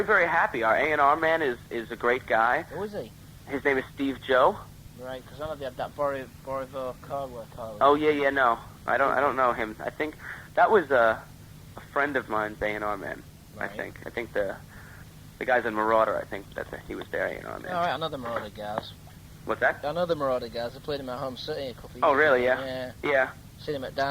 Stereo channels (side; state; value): both; identical; correlation 1.00